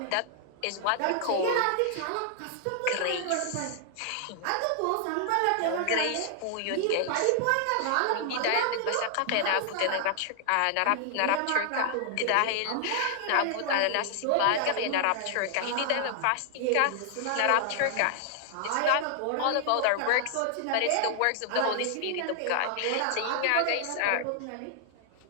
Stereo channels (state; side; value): different; both; correlation 0.00